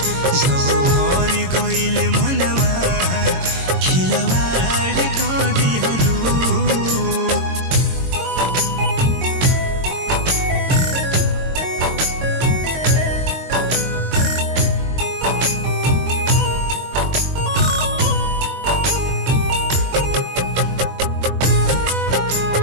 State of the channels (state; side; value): late; left; 22 ms